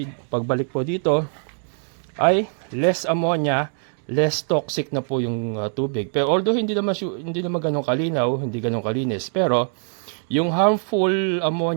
po dito ay less ammonia, less toxic na po yung tubig. Pero although hindi naman ganun kalinaw, hindi ganun kalinis, pero yung harmful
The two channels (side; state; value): left; silent; 56 dB below the other